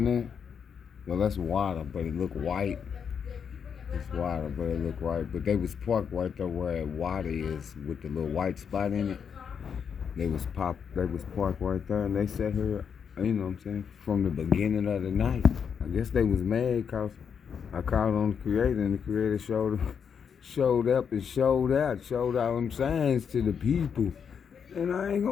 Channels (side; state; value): right; quieter; 7.1 dB